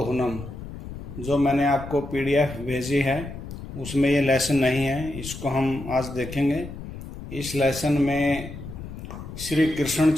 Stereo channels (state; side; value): noise; left; rumble, 11 dB below the sound